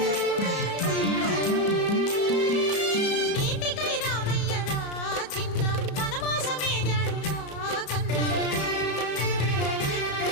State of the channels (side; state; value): right; late; 34 ms